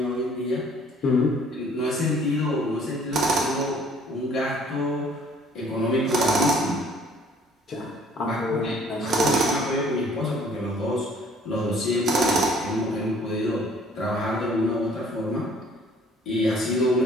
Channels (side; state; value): both; normal; correlation 0.57